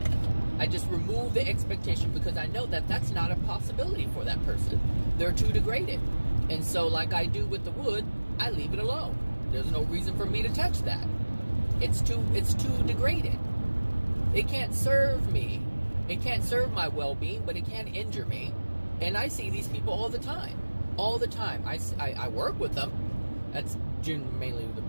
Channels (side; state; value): both; inverted; correlation -1.00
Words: I just remove the expectation because I know that that's not a possibility for that person. They're too degraded. And so like I do with the wood, I leave it alone. There's no reason for me to touch that. It's too degraded. It can't serve me. It can't serve my well-being, but it can injure me. And I see these people all the time. All the time. I work with them. That's mainly the